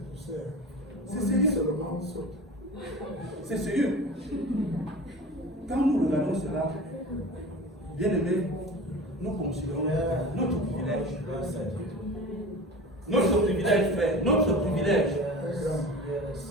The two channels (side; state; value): both; normal; correlation 0.35